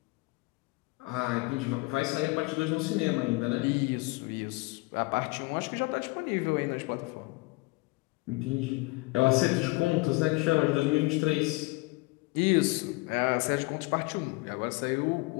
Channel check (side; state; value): right; quieter; 25.2 dB